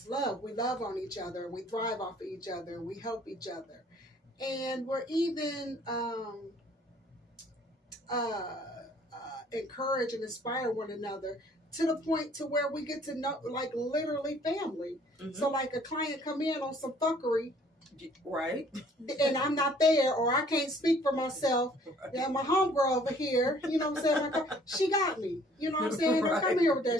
love. We love on each other. We thrive off of each other. We help each other. And we're even encourage and inspire one another to the point to where we get to know, like, literally family. Mm-hmm. So, like, a client come in on some fuckery. Right. And I'm not there, or I can't speak for myself. Right. Yeah, my homegirl over here, you know what I'm saying? Like, she got me. You know what I'm saying? Right. Come here with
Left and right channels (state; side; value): normal; both; correlation 0.57